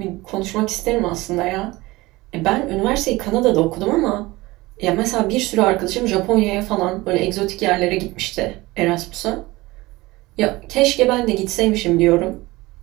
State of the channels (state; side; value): quieter; left; 20.5 dB